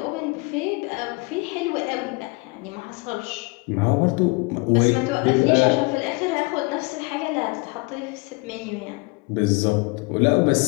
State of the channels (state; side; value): quieter; right; 27.6 dB